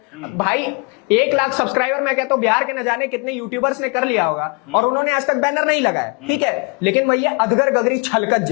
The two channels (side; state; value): right; quieter; 31.3 dB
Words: भाई 1 लाख सब्सक्राइबर मैं कहता हूं बिहार के न जाने कितने यूट्यूबर्स ने कर लिया होगा और उन्होंने आज तक बैनर नहीं लगाया, ठीक है, लेकिन वही अधगर गगरी छलकत